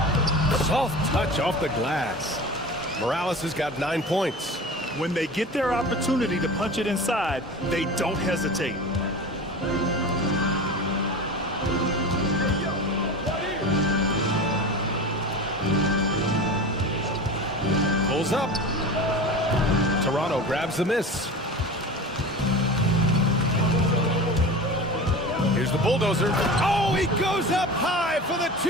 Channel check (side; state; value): both; normal; correlation 0.33